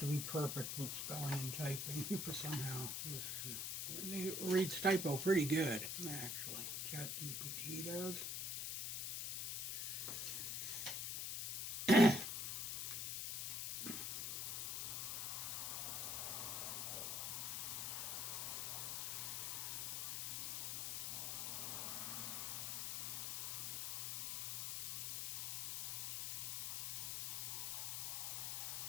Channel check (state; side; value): noise; left; hiss, 1 dB below the sound